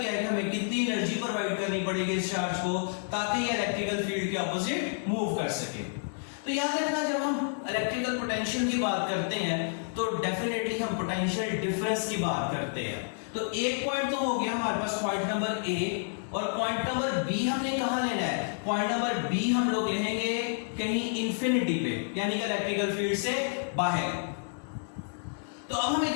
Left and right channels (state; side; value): silent; right; digital silence